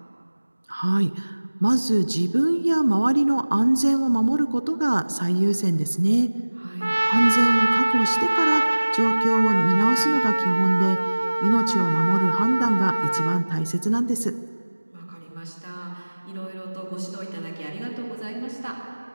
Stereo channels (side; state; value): both; inverted; correlation -1.00